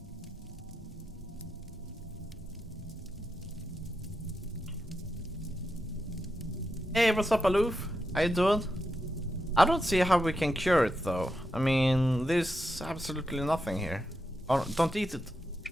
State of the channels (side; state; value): both; normal; correlation 0.87